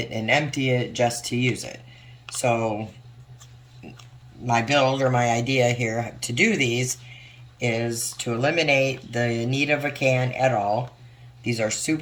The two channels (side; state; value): both; identical; correlation 1.00